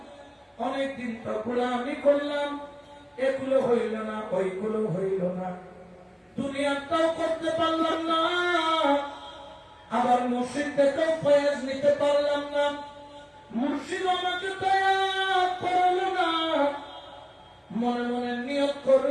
অনেকদিন তো গোলামি করলাম, এগুলো হইল না, ওইগুলো হইল না, দুনিয়াটাও করতে পারলাম না, আবার মুর্শিদ থেকেও ফয়েজ নিতে পারলাম না, মুর্শিদ আমাকে দয়া করল না। মনে মনে নিয়ত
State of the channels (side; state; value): both; identical; correlation 1.00